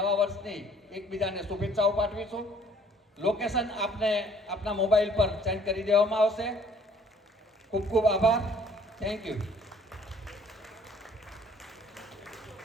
વર્ષની એકબીજાને શુભેચ્છાઓ પાઠવીશું. લોકેશન આપને આપના મોબાઈલ પર સેન્ડ કરી દેવામાં આવશે. ખૂબ ખૂબ આભાર. Thank you.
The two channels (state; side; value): normal; both; correlation 0.58